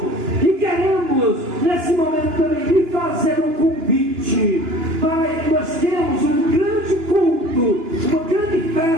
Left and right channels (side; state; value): left; late; 2.9 ms